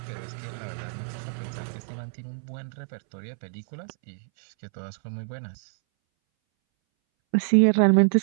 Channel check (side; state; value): left; silent; 60 dB below the other